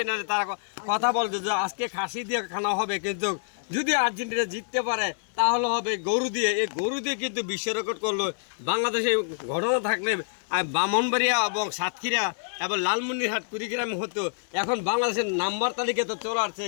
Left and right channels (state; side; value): silent; right; digital silence